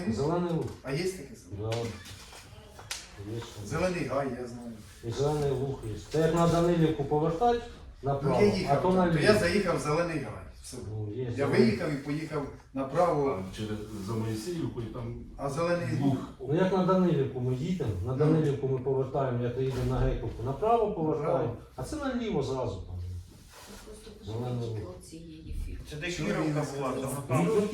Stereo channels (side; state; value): both; identical; correlation 1.00